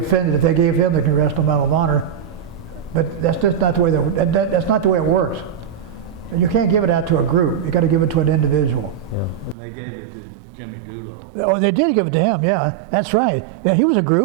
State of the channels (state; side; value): drops out; left; at 9.6 s